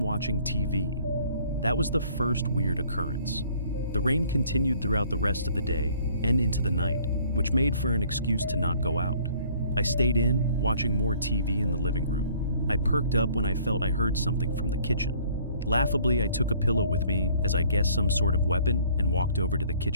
watching TV. That was the first weird occurrence. The rain continued throughout the rest of the day and into the night, which made for an excuse to not go out. I stayed in, watching more TV in the living room. I perked up when I felt I heard something from the kitchen. Laughably, I took a pillow with me as I guessed some sort of weapon and walked over to the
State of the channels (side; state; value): both; inverted; correlation -0.58